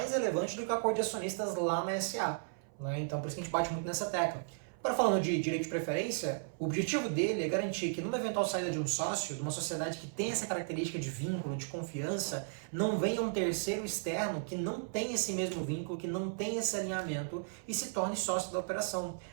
relevante do que o acordo de acionistas lá na SA. Né? Então por isso que a gente bate muito nessa tecla. Agora, falando de direito de preferência, o objetivo dele é garantir que numa eventual saída de um sócio, de uma sociedade que tem essa característica de vínculo, de confiança, não venha um terceiro externo que não tem esse mesmo vínculo, que não tem esse alinhamento e se torne sócio da operação.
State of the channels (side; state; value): left; silent; 54 dB below the other